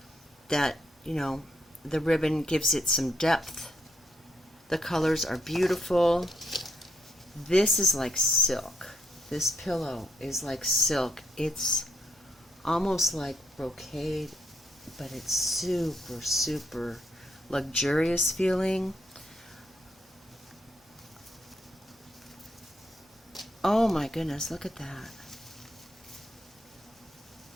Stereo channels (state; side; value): normal; both; correlation 0.76